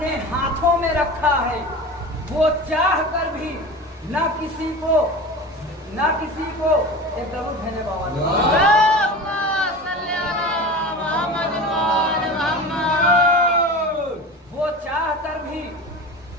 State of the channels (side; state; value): both; normal; correlation 0.32